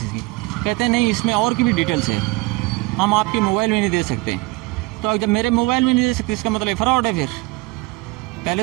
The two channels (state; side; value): quieter; left; 22.4 dB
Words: इसकी। कहते हैं नहीं, इसमें और की भी डिटेल्स है, हम आपके मोबाइल में नहीं दे सकते। तो जब मेरे मोबाइल में नहीं दे सकते इसका मतलब फ्रॉड है। फिर पहले